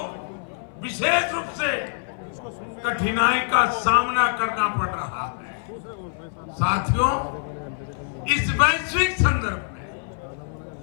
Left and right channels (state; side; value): silent; right; 59 dB below the other